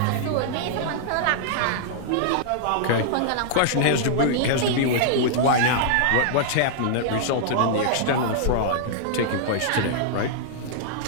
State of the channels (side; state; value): both; different; correlation -0.01